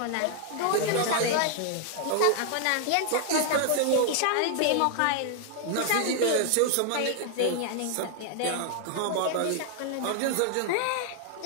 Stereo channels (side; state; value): both; different; correlation 0.00